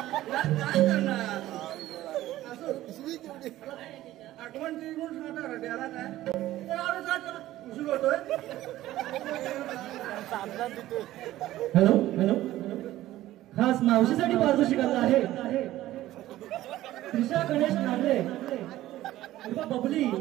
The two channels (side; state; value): left; quieter; 15.0 dB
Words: काय करणार असं आठवण ती म्हणून सांगता त्याला काय उशीर होतोय. हॅलो हॅलो खास मावशीसाठी पारितोषिक आलं आहे. त्रिशा गणेश नागरे बबली